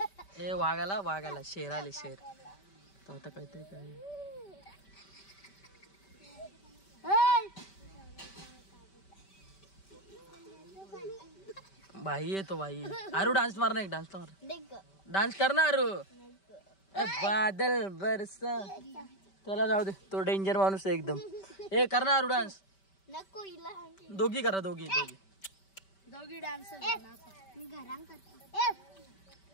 ए वाघाला शेर आले. शेर तो आता काहीतरी काय. भाई येतो भाई. आरू डान्स मार ना. एक डान्स मार. डान्स कर ना आरू. बादल बरसा त्याला जाऊ दे, तो डेंजर माणूस आहे एकदम. ए करणार डान्स नको हिला दोघी करा दोघी डान्स मी घरात करतो.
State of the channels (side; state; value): right; late; 5.2 ms